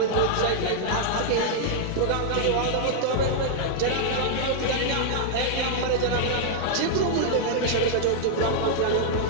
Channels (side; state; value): both; different; correlation -0.01